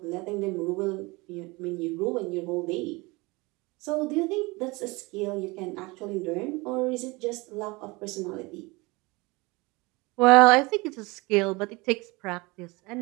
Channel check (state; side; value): quieter; left; 24.5 dB